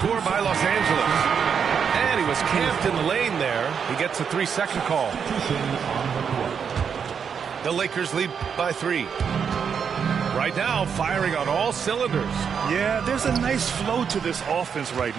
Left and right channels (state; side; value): quieter; left; 6.9 dB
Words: by Los Angeles. And he was camped in the lane there. He gets a 3-second call. The Lakers lead by 3. Right now, firing on all cylinders. Yeah, there's a nice flow to this offense right